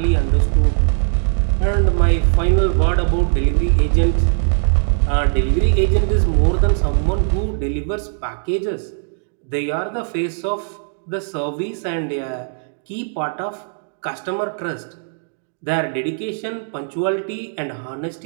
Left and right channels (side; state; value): left; silent; digital silence